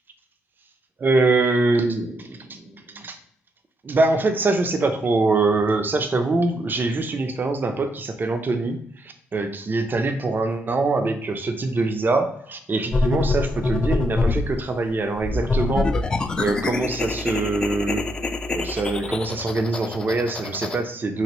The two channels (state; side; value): normal; both; correlation 0.78